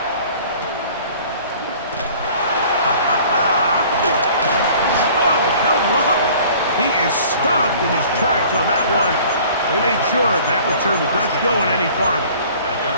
He is stopped in his tracks on that one. They made sure that return was not going any farther. At their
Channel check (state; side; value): inverted; both; correlation -0.50